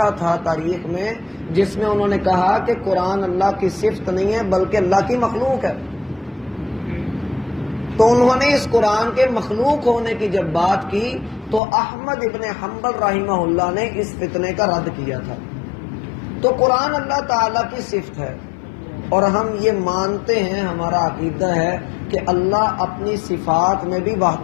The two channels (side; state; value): right; drops out; at 11.6 s